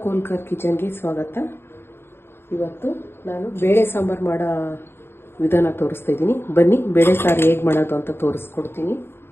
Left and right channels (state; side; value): late; right; 0.11 ms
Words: ಕೋಲ್ಕರ್ ಕಿಚನ್ಗೆ ಸ್ವಾಗತ. ಇವತ್ತು ನಾನು ಬೇಳೆ ಸಾಂಬಾರು ಮಾಡೋ ವಿಧಾನ ತೋರಿಸ್ತಾ ಇದ್ದೀನಿ. ಬನ್ನಿ ಬೇಳೆ ಸಾರು ಹೇಗೆ ಮಾಡೋದು ಅಂತ ತೋರಿಸ್ಕೊಡ್ತೀನಿ.